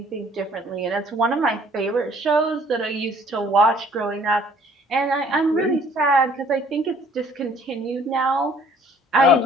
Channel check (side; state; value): both; normal; correlation 0.57